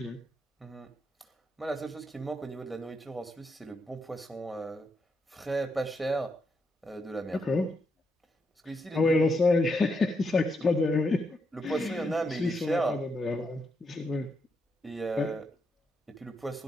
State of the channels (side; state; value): both; normal; correlation 0.81